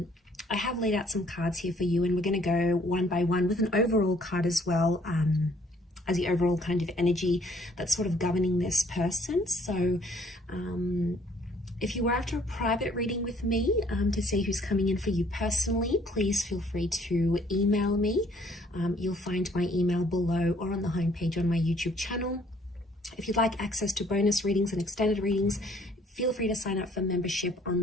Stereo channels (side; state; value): both; normal; correlation 0.61